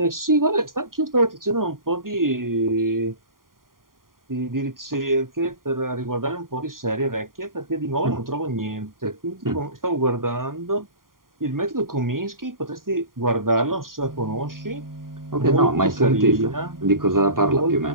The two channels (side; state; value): left; late; 0.91 ms